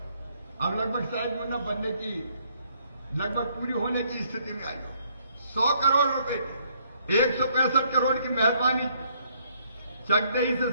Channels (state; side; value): inverted; both; correlation -0.68